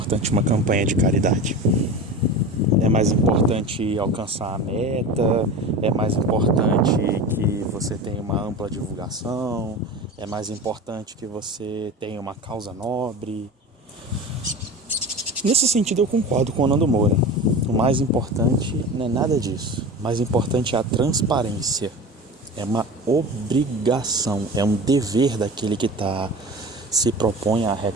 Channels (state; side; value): normal; both; correlation 0.32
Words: uma campanha de caridade? É mais importante alcançar a meta? É mais importante que você tenha uma ampla divulgação? É mais importante que você tenha uma causa nobre? Nesse sentido eu concordo com o Nando Moura. O mais importante não é nada disso. O mais importante é a transparência. É uma obrigação, é um dever daquele que se propõe a